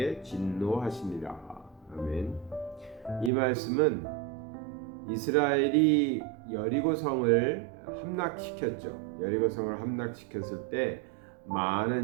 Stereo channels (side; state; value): left; drops out; at 3.3 s